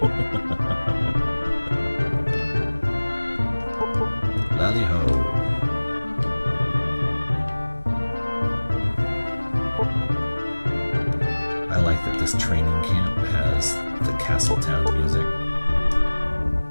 Lally-ho. I like that this training camp has the Castletown music.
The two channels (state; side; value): inverted; both; correlation -1.00